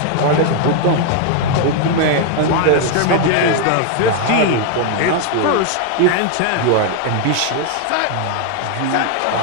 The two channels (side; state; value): both; different; correlation 0.00